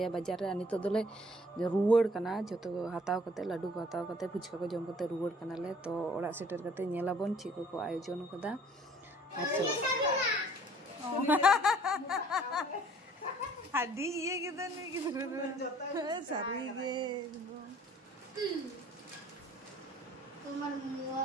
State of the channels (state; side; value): normal; both; correlation 0.55